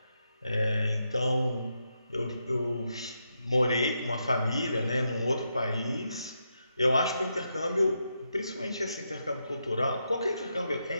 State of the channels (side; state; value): both; inverted; correlation -0.83